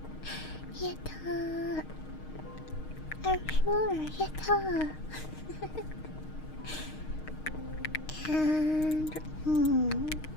Yatta. Our floor, yatta. And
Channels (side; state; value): right; late; 6.5 ms